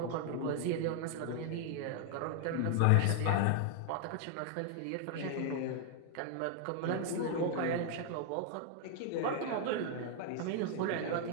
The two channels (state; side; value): different; both; correlation 0.00